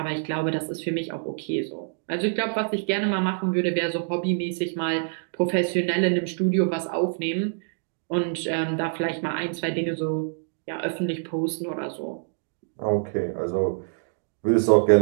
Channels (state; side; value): silent; left; digital silence